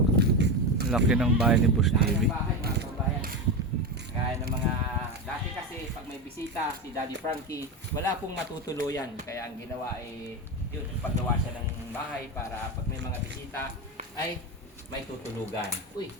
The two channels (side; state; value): both; normal; correlation 0.17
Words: Laki ng bahay ni Boss Laki TV. ng bahay mga kababayan. Kaya ng mga dati kasi pag may bisita si Daddy Frankie, wala pong matutuluyan. Kaya ang ginawa ay yun, paggawa siya ng bahay para pag may mga bisita ay may tutulugan. Uy,